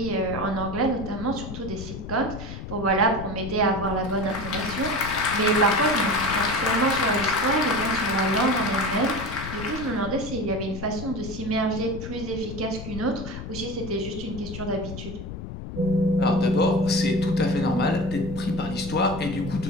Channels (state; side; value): noise; left; rumble, 9 dB below the sound